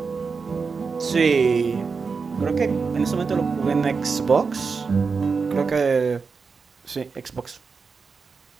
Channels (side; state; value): left; quieter; 5.0 dB